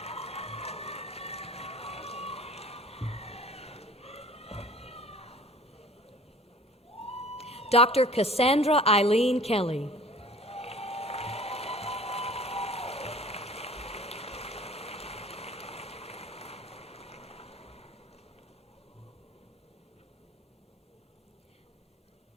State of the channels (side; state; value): both; normal; correlation 0.47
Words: Dr. Cassandra Eileen Kelly.